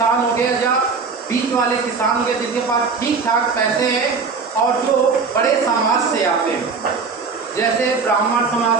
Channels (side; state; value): left; quieter; 4.9 dB